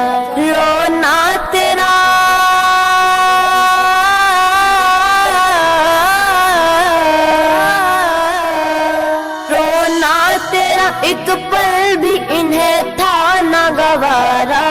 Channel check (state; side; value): identical; both; correlation 1.00